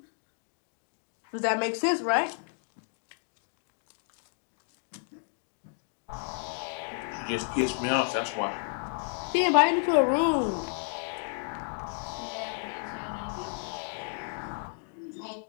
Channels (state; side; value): silent; right; 57 dB below the other